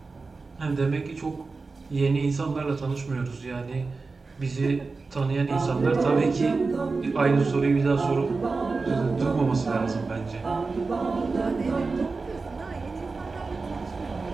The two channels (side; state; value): left; quieter; 4.1 dB